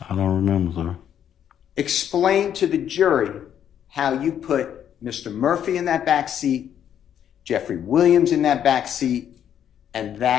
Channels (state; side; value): quieter; right; 9.6 dB